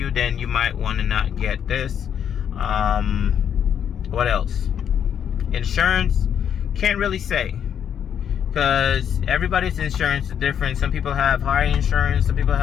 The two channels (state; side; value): quieter; right; 8.7 dB